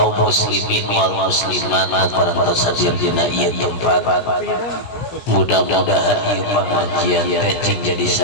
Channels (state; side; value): late; right; 17 ms